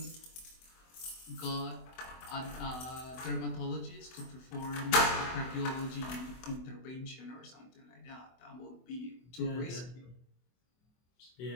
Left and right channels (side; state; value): right; late; 24 ms